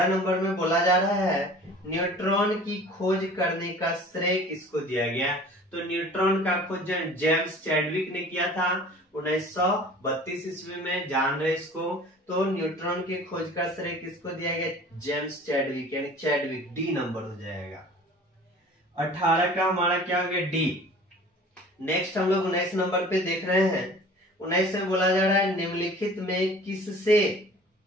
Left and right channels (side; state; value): both; normal; correlation 0.45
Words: नंबर में बोला जा रहा है न्यूट्रॉन की खोज करने का श्रेय किसको दिया गया। तो न्यूट्रॉन का खोज जेम्स चैडविक ने किया था 1932 ईस्वी में, जान रहे इसको। तो न्यूट्रॉन की खोज का श्रेय किसको दिया गया, जेम्स चैडविक, यानी चैडविक, डी नंबर हो जाएगा। 18 का हमारा क्या हो गया, डी। नेक्स्ट हम लोग 19 नंबर पे देख रहे हैं। 19 में बोला जा रहा है निम्नलिखित में